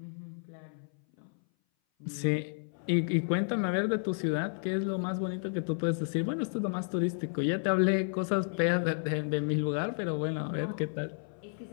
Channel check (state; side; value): silent; right; 57 dB below the other